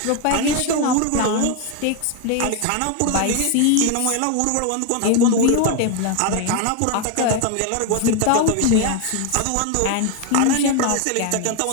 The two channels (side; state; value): both; different; correlation 0.01